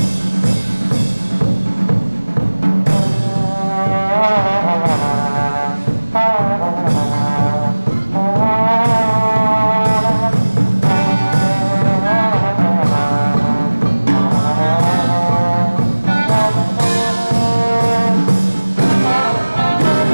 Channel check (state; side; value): inverted; both; correlation -1.00